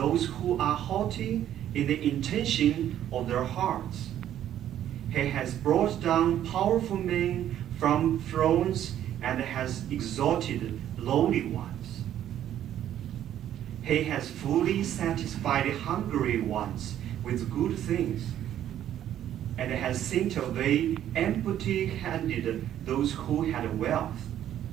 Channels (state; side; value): quieter; left; 11.2 dB